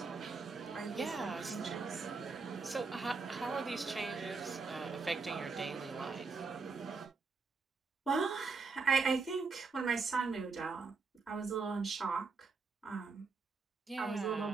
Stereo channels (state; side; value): quieter; left; 4.5 dB